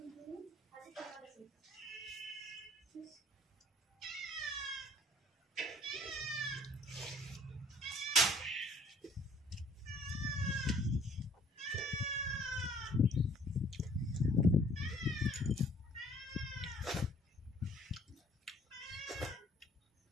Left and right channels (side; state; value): both; normal; correlation 0.57